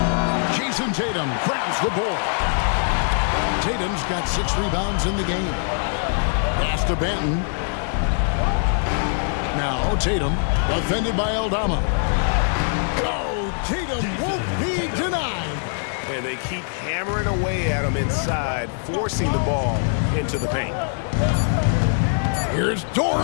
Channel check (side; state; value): right; silent; 64 dB below the other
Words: Jason Tatum grabs the board. Tatum's got 6 rebounds in the game. Pass to Banton. Now Tatum, defended by Aldama. Oh, Tatum won't be denied. And they keep hammering away at him inside, forcing the ball into the paint. Here's